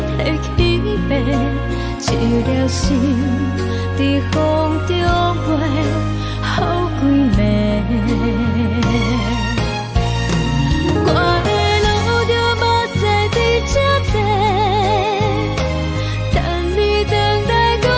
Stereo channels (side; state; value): both; identical; correlation 1.00